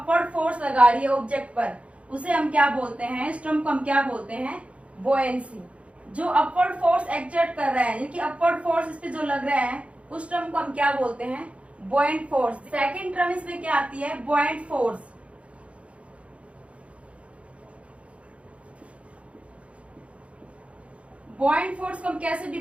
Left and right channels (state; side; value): late; left; 0.062 ms